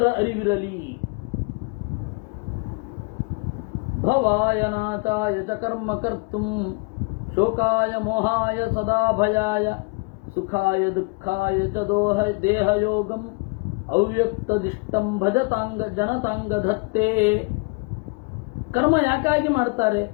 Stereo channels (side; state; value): right; quieter; 29.8 dB